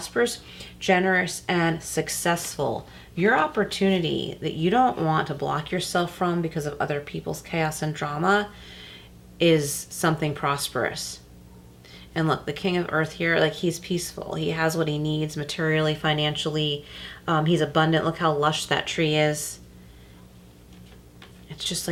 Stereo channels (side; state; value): both; identical; correlation 1.00